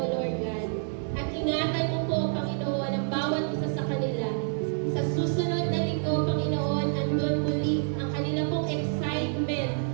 Lord God. At ingatan mo po, Panginoon, ang bawat isa sa kanila. Sa susunod na linggo, Panginoon, andun muli ang kanila pong excitement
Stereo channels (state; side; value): silent; left; digital silence